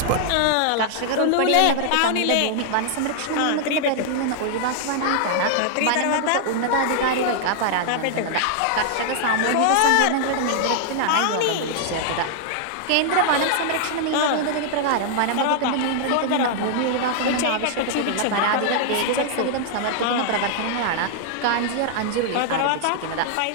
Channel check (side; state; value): both; different; correlation -0.01